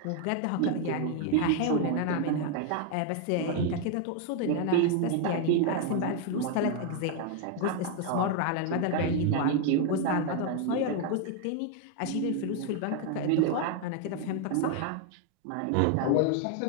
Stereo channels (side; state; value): both; different; correlation 0.00